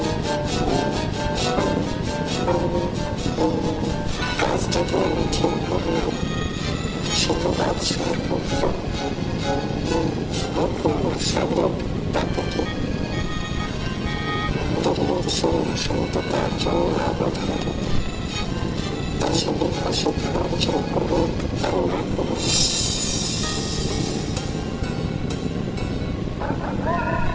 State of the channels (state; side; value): identical; both; correlation 1.00